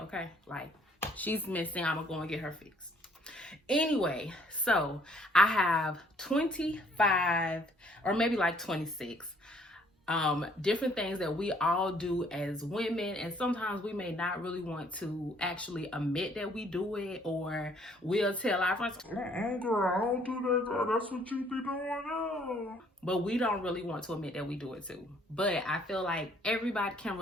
okay? Like, she's missing, I'm gonna go and get her fixed. Anyway, so I have 25 or maybe like 26 different things that we all do as women, and sometimes we may not really want to actually admit that we do it, or we'll tell our friends, girl, I don't do that, girl. That's what you be doing now. But we don't really want to admit that we do it too. But I feel like everybody can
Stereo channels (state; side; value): normal; both; correlation 0.62